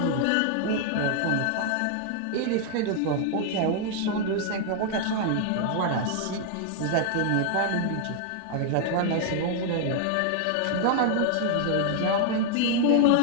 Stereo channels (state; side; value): different; both; correlation 0.00